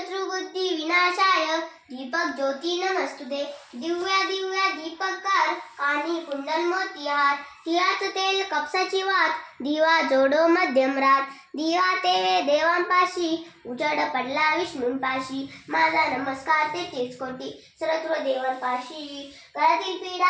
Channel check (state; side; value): identical; both; correlation 1.00